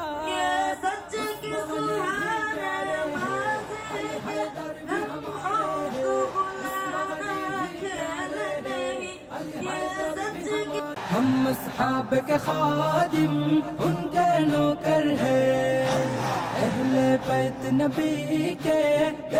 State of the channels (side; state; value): both; identical; correlation 1.00